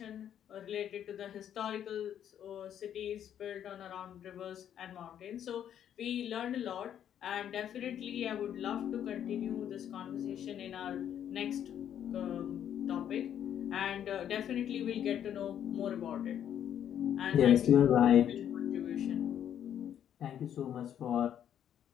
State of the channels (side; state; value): right; quieter; 9.8 dB